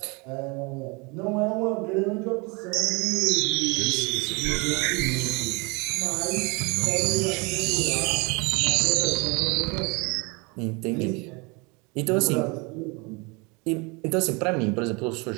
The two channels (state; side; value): quieter; left; 28.7 dB